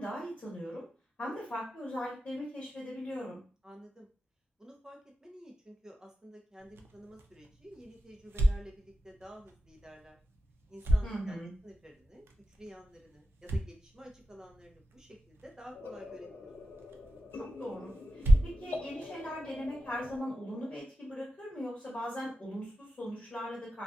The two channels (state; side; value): normal; both; correlation 0.92